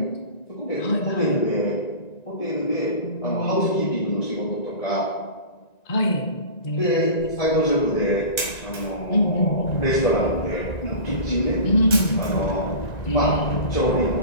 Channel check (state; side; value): late; right; 1.9 ms